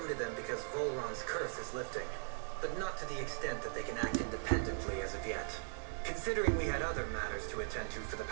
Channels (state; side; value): silent; left; 52 dB below the other